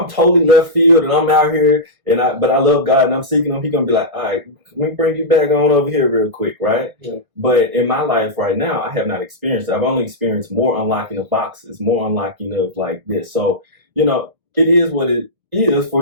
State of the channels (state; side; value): late; left; 1.5 ms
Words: totally left field and I'm out here but I love God and I'm seeking him, he's going to be like, all right, let me bring you back on over here real quick, right? Yeah. But in my life right now, I have not experienced it. I've only experienced more unlocking of boxes, more unlocking of like this. So, it is what it is for